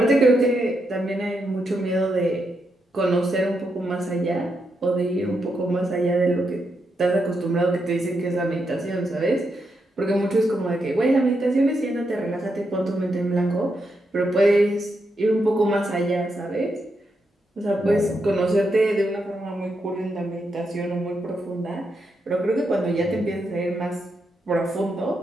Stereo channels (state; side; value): normal; both; correlation 0.83